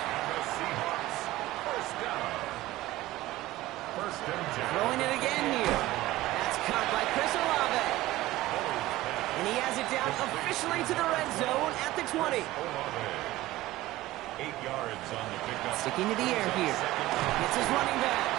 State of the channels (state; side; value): quieter; left; 17.0 dB